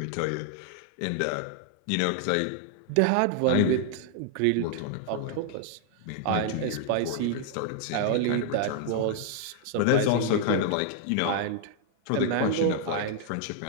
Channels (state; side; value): different; both; correlation -0.01